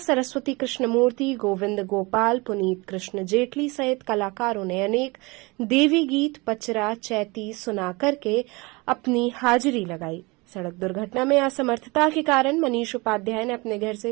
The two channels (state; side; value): quieter; left; 25.4 dB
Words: कृष्णमूर्ति, गोविंद गोपाल, पुनीत कृष्ण जेटली सहित कलाकारों ने अनेक देवी गीत, पचरा, चैती सुना करके अपनी हाजिरी लगाई। सड़क दुर्घटना में असमर्थता के कारण मनीष उपाध्याय ने अपने घर से